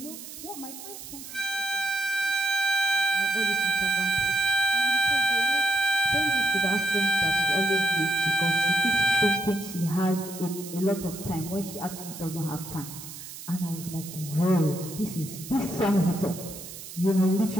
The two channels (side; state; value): right; noise; hiss, 13 dB below the sound